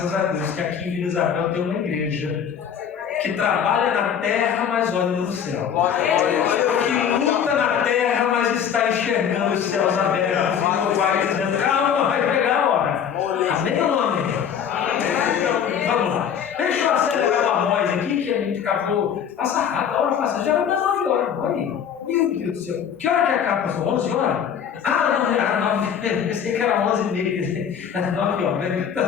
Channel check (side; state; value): right; quieter; 8.2 dB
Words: a Deus que aqui em Vila Isabel tem uma igreja que trabalha na terra, mas olha no céu. Que luta na terra, mas está enxergando os céus abertos. E no pai dizendo, calma, vai pegar a hora. Amém ou não amém? Vamos lá. Deixa eu acelerar a voz aqui, que a gente acabou. Passa rápido, a hora passa. Já vai dar 9 horas. Olha aí. Meu Deus do céu. Que hora que acaba, pastor? 11 horas? Ah, não, era 9. Eu pensei que era 11h30. Era 9 horas.